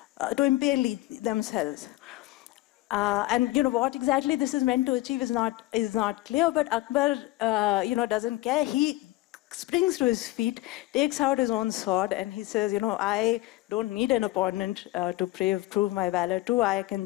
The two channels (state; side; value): quieter; right; 18.2 dB